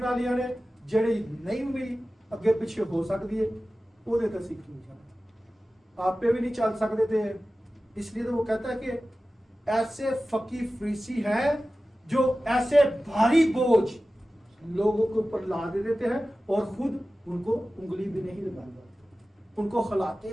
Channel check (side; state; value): both; normal; correlation 0.95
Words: والیاں نے جڑی نہیں بھی اگے پیچھے ہو سکتی ہے وہ دے تے سیکھ نہیں جانا آپ پہ بھی نہیں چل سکتے تھے. اس لیے تو وہ کہتا ہے کہ ایسے فقی فریسی ہیں جو ایسے بھاری بوجھ لوگوں کے اوپر لا دے دیتے ہیں اور خود ان کو انگلی بھی نہیں لگاتے، ان کو خلاتے